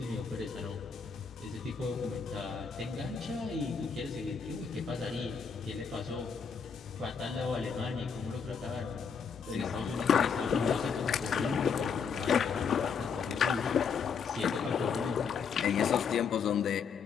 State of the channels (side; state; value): right; quieter; 6.2 dB